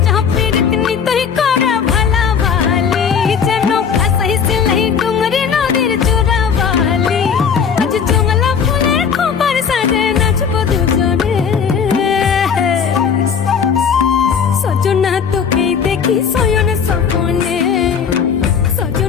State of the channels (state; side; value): quieter; right; 6.8 dB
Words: হাফের দিন তুই করে ভালাবালি যেন ভাসাই সিলাই ডুঙরি নদীর চোরাবালি আজ জঙ্গলা ফুলের খোপার সাজে নাচবো দুজনে সজনা তোকে দেখি শয়ন স্বপনে